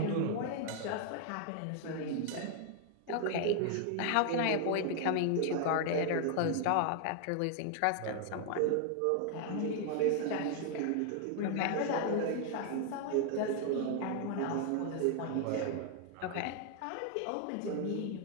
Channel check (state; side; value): different; both; correlation 0.00